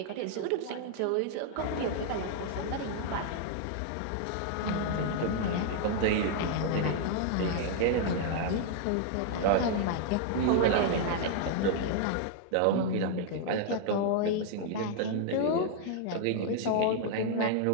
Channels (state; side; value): different; both; correlation 0.00